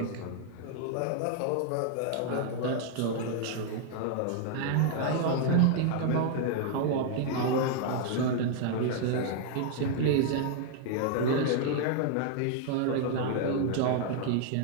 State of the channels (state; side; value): different; both; correlation 0.00